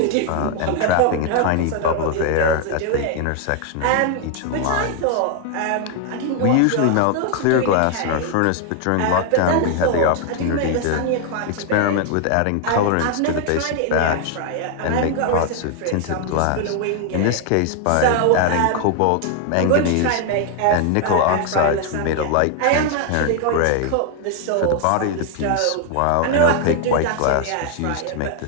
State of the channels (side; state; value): both; different; correlation 0.00